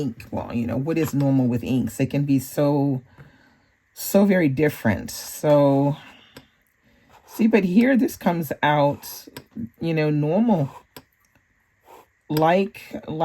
well, you know, what is normal with inks? It can be so very different. So, see, but here this comes out, you know, normal. Like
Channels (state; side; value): identical; both; correlation 1.00